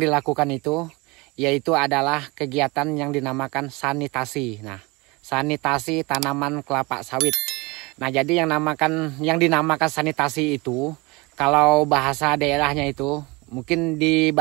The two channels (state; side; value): quieter; left; 25.3 dB